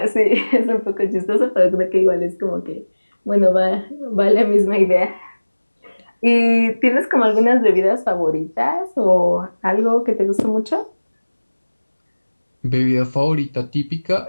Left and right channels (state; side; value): inverted; both; correlation -1.00